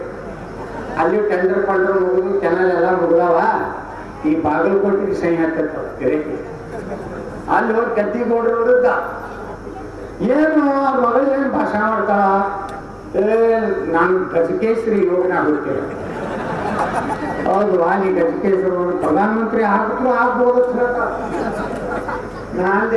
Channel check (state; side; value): identical; both; correlation 1.00